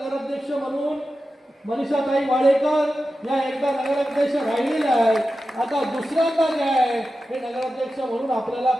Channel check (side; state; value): both; normal; correlation 0.92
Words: म्हणून मनीषाताई वाडेकर या एकदा नगराध्यक्ष राहिलेल्या आहेत। आता दुसऱ्यांदा जे आहे हे नगराध्यक्ष म्हणून आपल्याला